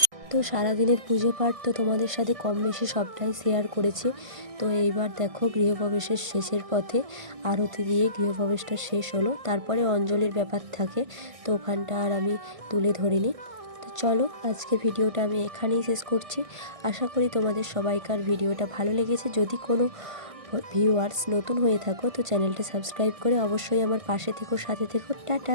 তো সারাদিনের পুজো পাঠ তো তোমাদের সাথে কম বেশি সবটাই শেয়ার করেছি। তো এইবার দেখো গৃহপ্রবেশের শেষের পথে আরতি দিয়ে গৃহপ্রবেশটা শেষ হলো, তারপরে অঞ্জলির ব্যাপার থাকে, তো ওখানটা আর আমি তুলে ধরিনি। তো চলো আজকে ভিডিওটা আমি এখানেই শেষ করছি। আশা করি তোমাদের সবাইকার ভিডিওটা ভালো লেগেছে। যদি কোনো ভিউয়ার্স নতুন হয়ে থাকো তো চ্যানেলটা সাবস্ক্রাইব করে অবশ্যই আমার পাশে থেকো, সাথে থেকো।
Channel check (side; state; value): left; late; 1.5 ms